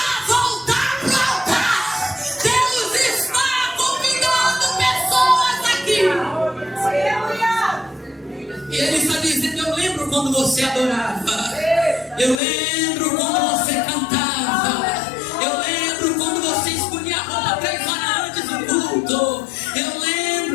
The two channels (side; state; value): right; drops out; at 12.4 s